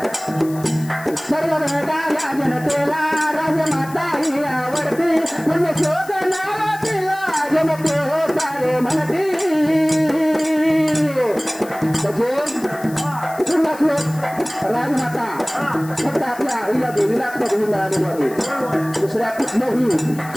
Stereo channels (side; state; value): left; noise; hiss, 19 dB below the sound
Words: सर्व वेगाला जनतेला राजमाता ही आवडती. म्हणजे शोध नाव तिला जनते हो सारे म्हणती. पुन्हा श्लोक राजमाता फक्त आपल्या आईला देवीला पदवी मिळालेली आहे. दुसऱ्या कुठल्याही